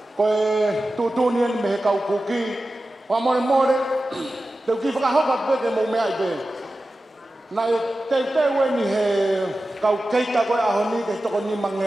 Koe tūtūnien me he kau kuki, whamore, teu ki whakahoka peke mō mea i pe. Nai teu ni he kau keita koe aho ni ke toko ni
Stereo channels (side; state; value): both; normal; correlation 0.94